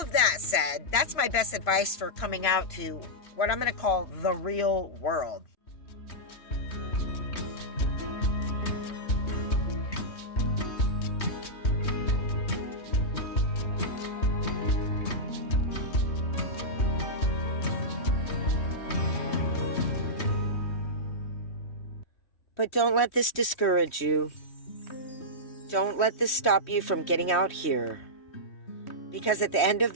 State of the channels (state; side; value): late; right; 3.1 ms